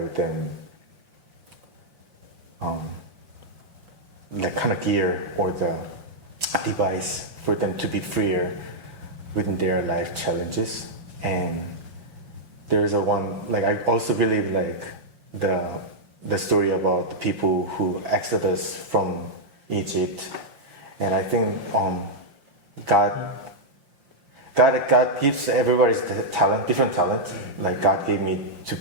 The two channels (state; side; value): late; left; 6.3 ms